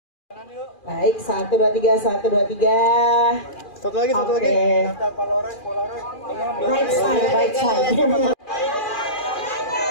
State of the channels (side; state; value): right; late; 2.4 ms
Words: Baik, 1, 2, 3, 1, 2, 3. Satu lagi. Right side.